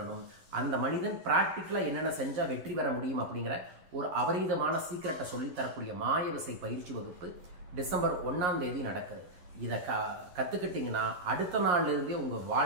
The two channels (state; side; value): late; left; 11 ms